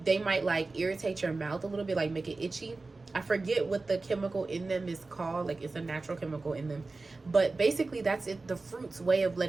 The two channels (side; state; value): left; quieter; 3.5 dB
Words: they might like irritate your mouth a little bit, like make it itchy. I forget what the chemical in them is called. Like, it's a natural chemical in them. But basically, that's it. The fruit's way of